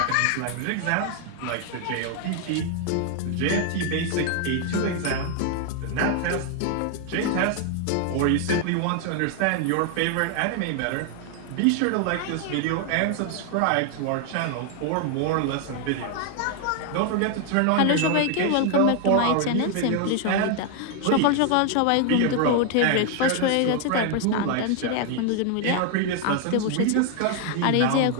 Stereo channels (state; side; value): different; both; correlation 0.00